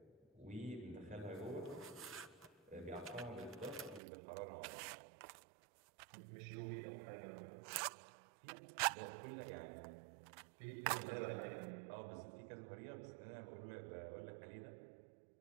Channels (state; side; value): drops out; left; at 4.0 s